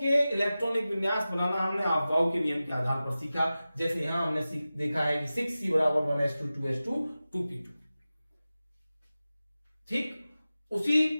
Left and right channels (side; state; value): both; inverted; correlation -0.95